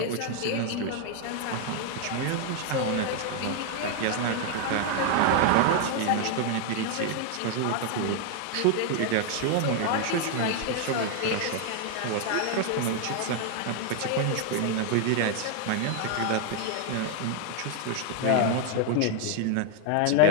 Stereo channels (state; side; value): different; both; correlation 0.00